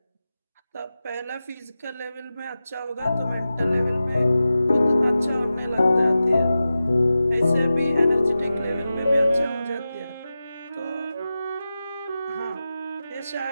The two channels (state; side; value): inverted; both; correlation -0.93